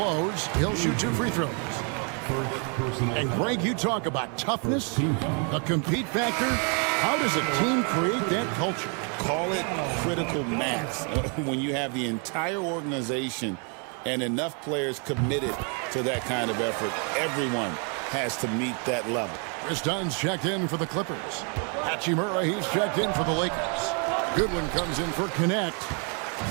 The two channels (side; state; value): left; quieter; 37.9 dB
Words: He'll shoot 2 free throws. And Greg, you talk about toughness, a compete factor. How does a team create that culture? Call it critical mass. When you have the entire organization and enough players committed to that kind of effort, everyone has to meet that level. Chris Dunn's checked in for the Clippers. Hachimura, he's checked in for the Lakers. Goodwin comes in for Connect.